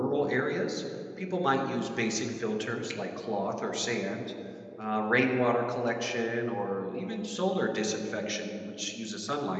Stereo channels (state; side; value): identical; both; correlation 1.00